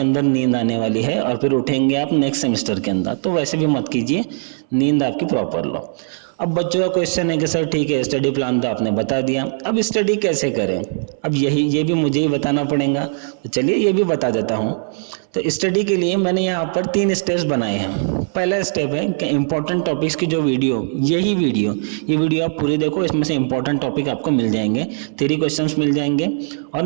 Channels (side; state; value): left; silent; 60 dB below the other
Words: अंदर नींद आने वाली है और फिर उठेंगे आप नेक्स्ट सेमेस्टर के अंदर, तो वैसे भी मत कीजिए, नींद आपकी प्रॉपर लो। अब बच्चों का क्वेश्चन है कि सर ठीक है स्टडी प्लान तो आपने बता दिया, अब स्टडी कैसे करें, अब ये भी मुझे ही बताना पड़ेगा, तो चलिए ये भी बता देता हूँ। तो स्टडी के लिए मैंने यहाँ पर 3 स्टेप्स बनाए हैं। पहला स्टेप है कि इंपॉर्टेंट टॉपिक्स की जो वीडियो, ये वीडियो आप पूरी देखो, इसमें से इंपॉर्टेंट टॉपिक आपको मिल जाएंगे, थ्योरी क्वेश्चंस मिल जाएंगे और